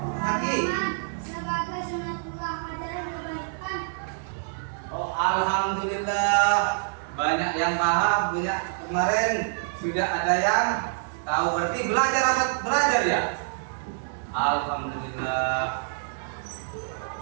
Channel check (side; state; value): left; silent; 60 dB below the other